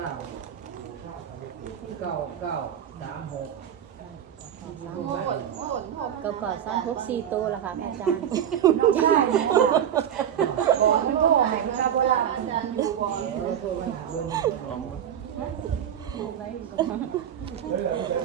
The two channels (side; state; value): left; quieter; 9.5 dB